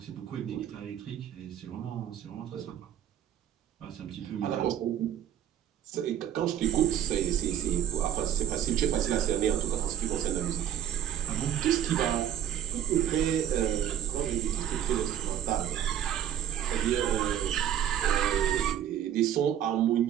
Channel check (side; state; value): left; quieter; 10.2 dB